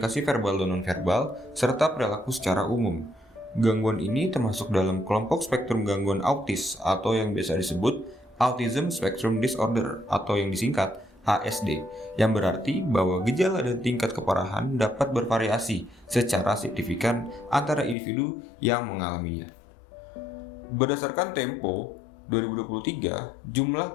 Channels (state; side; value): drops out; right; at 17.9 s